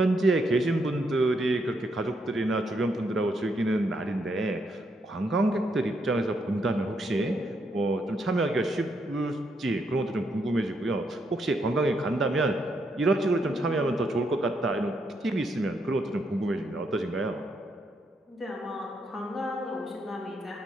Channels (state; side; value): normal; both; correlation 0.77